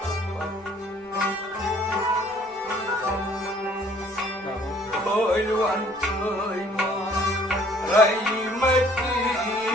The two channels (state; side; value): normal; both; correlation 0.58